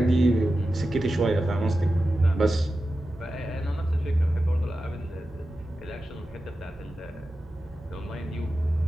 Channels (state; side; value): normal; both; correlation 0.93